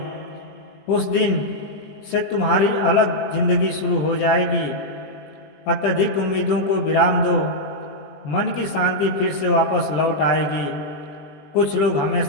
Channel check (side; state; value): right; late; 20 ms